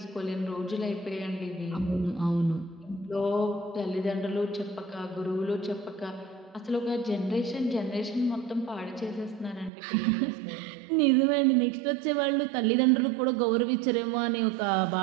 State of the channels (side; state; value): left; drops out; at 9.7 s